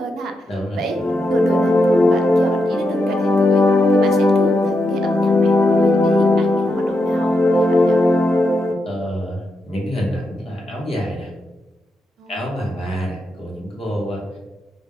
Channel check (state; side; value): normal; both; correlation 0.84